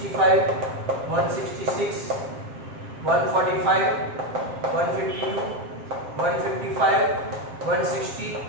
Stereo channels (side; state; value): left; late; 7.6 ms